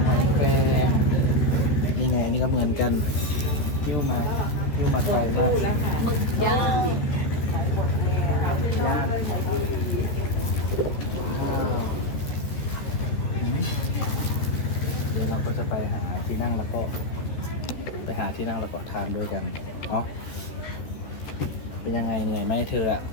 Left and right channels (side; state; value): right; late; 14 ms